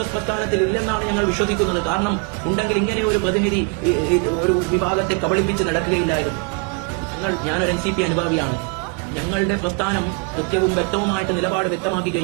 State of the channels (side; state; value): left; quieter; 32.7 dB